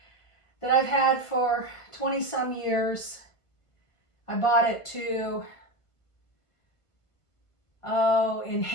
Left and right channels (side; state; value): right; late; 1.5 ms